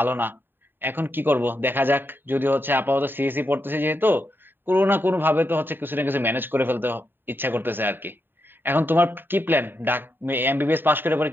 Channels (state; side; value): late; left; 0.096 ms